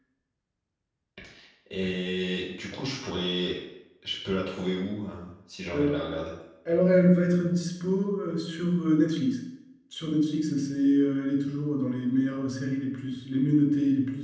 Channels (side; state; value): both; identical; correlation 1.00